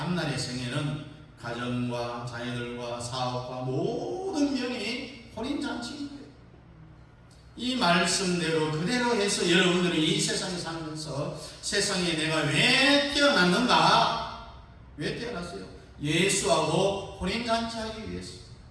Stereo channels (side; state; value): both; identical; correlation 1.00